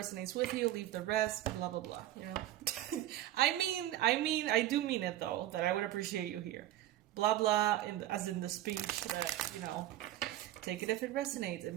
with you, leave the rest, blah, blah, blah, you know? I do mean it, though, that I would appreciate you here. Blah, blah, as in the speech that, you know, take it if it resonates. It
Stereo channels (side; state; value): left; quieter; 14.0 dB